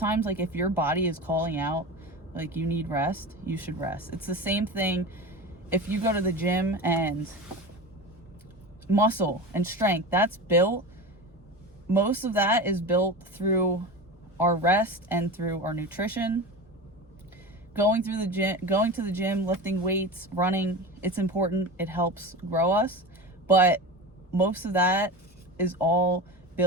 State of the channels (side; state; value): both; normal; correlation 0.28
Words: like, if your body is calling out, like, you need rest, you should rest. It's the same thing if you go to the gym, and muscle and strength, that's built. Most of that is built through our rest and through our nutrition. Going to the gym, lifting weights, running, it's important. It helps grow us. But most of that is all